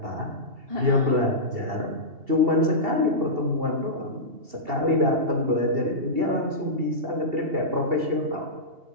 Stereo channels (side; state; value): left; late; 2.8 ms